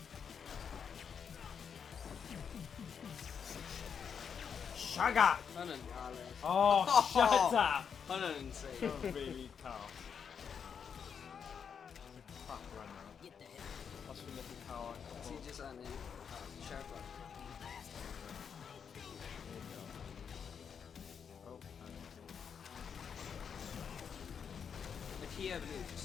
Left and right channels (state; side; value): quieter; right; 7.0 dB